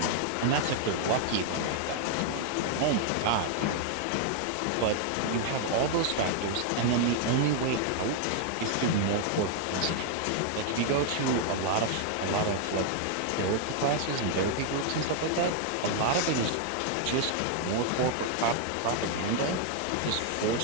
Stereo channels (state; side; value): different; both; correlation 0.00